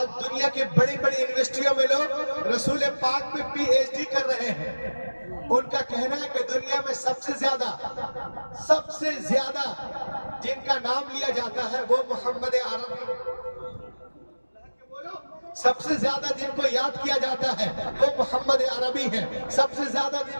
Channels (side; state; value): both; inverted; correlation -1.00